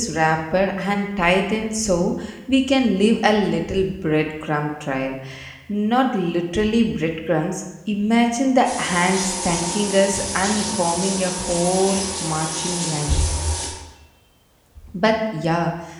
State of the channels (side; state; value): both; identical; correlation 1.00